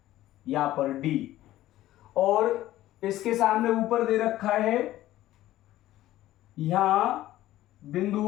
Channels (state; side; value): quieter; right; 14.8 dB